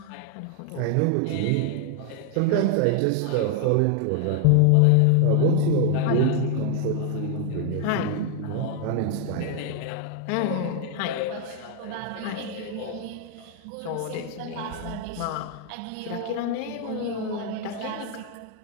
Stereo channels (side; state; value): both; different; correlation 0.00